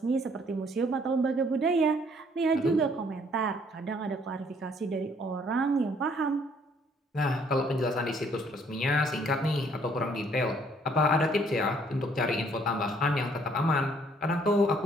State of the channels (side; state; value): both; normal; correlation 0.63